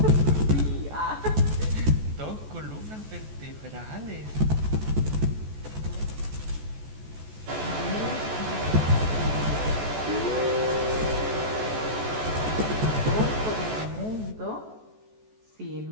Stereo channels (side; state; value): left; late; 14 ms